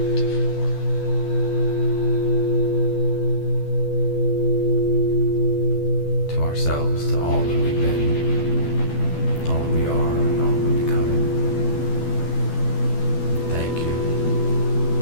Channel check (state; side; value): late; right; 12 ms